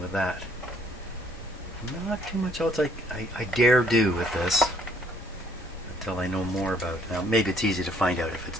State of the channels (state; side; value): normal; both; correlation 0.64